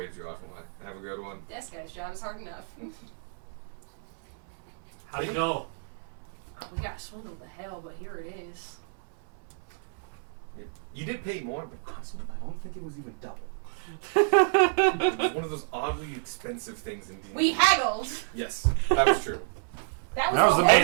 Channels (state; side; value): silent; left; 58 dB below the other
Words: you off and like, have a good one. Desk guy's job is hard enough. How'd it go? Oh, we got swindled to hell, but here it is. You did pay more, but honestly, I don't think it was even double. It was one of those oddly expensive things in D&D. We haggled. Yes, that was true. That was That was the the whole